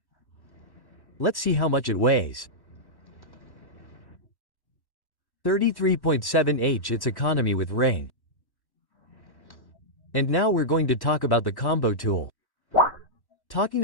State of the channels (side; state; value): right; late; 1.1 ms